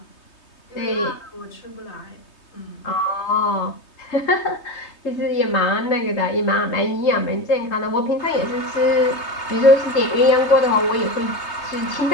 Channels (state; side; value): late; right; 3.2 ms